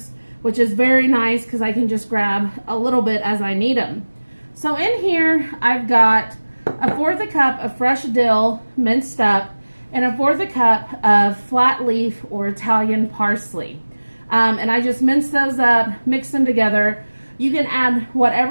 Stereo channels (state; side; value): inverted; both; correlation -1.00